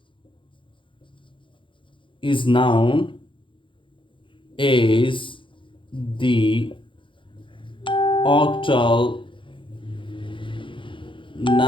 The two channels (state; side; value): late; right; 0.24 ms